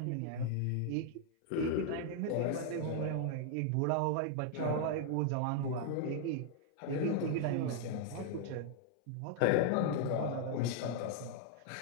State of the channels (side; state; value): both; different; correlation 0.00